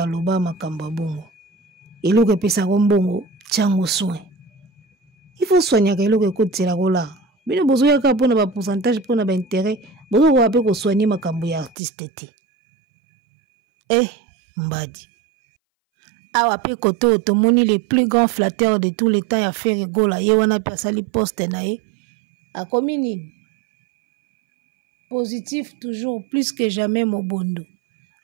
makambo bongo. Eloko pesa bongo tchango soin. Il faut soigner eloko côté la gola. Bino bozo yaka pona ba pourcentage pona ba intérêt, bozo ko ape ko soigner makambo ya artiste te. Mbadi. Awa pe koto tomoni le plus grand flatteur de tous les temps ya faire gola ye wana pe sali poste na ye. A komini positif toujours plus que jamais mobondo.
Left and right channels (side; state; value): left; drops out; at 11.8 s